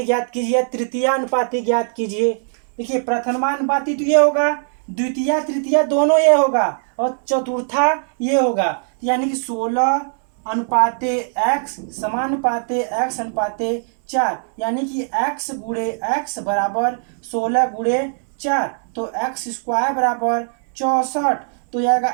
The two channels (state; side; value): silent; left; digital silence